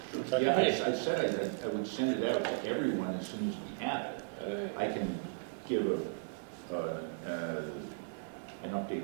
Okay. Yeah, I said I would send it out to everyone as soon as we have it. I can give an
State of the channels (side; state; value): left; silent; digital silence